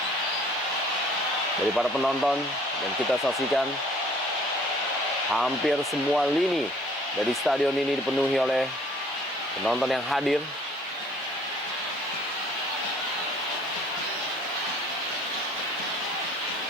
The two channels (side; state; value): both; normal; correlation 0.55